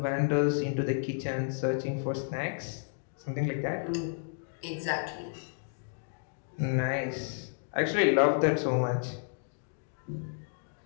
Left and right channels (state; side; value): silent; right; digital silence